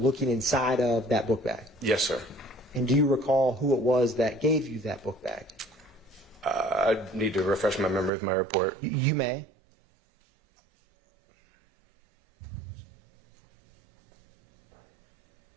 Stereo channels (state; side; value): drops out; left; at 8.1 s